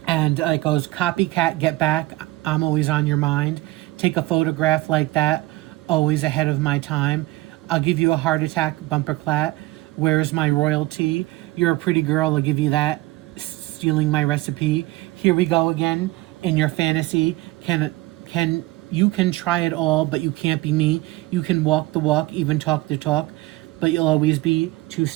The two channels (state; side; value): quieter; left; 19.2 dB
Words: And it goes, copycat, get back, I'm always on your mind. Take a photograph like that, always ahead of my time. I'll give you a heart attack, bumper clat. Where's my royalty? You're a pretty girl, I'll give you that. Stealing my recipe. Here we go again, in your fantasy. You can try it all, but you can't be me. You can walk the walk, even talk the talk, but you'll always be 2